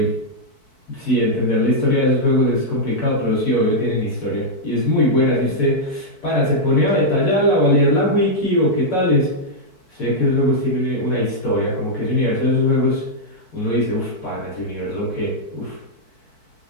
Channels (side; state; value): right; late; 4.6 ms